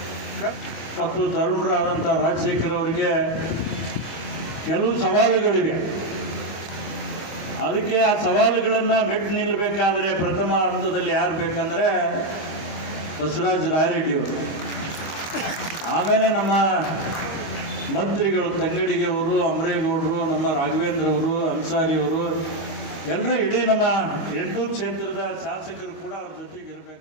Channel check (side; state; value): right; late; 24 ms